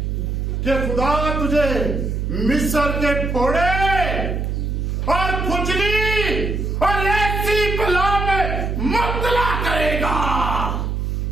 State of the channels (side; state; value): right; noise; hum, 1 dB below the sound